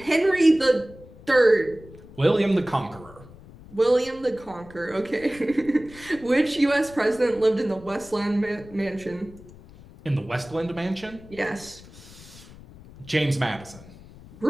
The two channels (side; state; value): left; noise; rumble, 20 dB below the sound